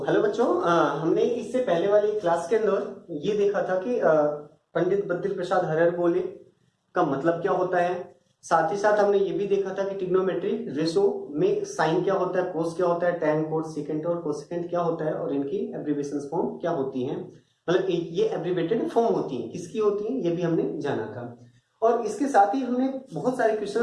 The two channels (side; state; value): both; identical; correlation 1.00